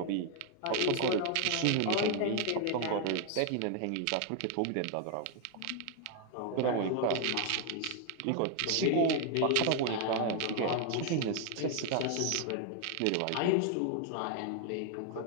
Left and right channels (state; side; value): different; both; correlation 0.00